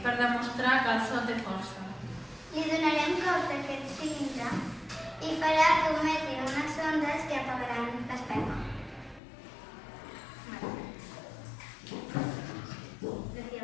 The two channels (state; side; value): drops out; right; at 9.2 s